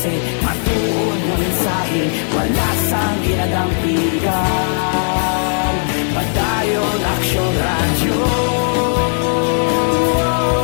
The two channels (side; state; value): right; silent; 58 dB below the other